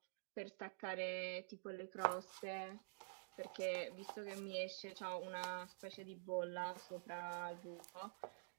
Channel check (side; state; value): left; silent; digital silence